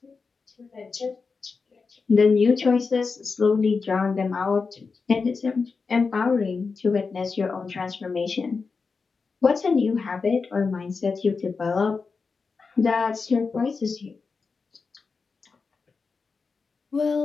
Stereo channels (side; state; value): right; quieter; 4.7 dB